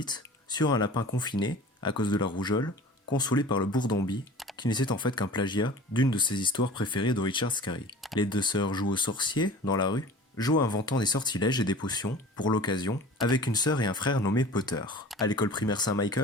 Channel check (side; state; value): both; normal; correlation 0.42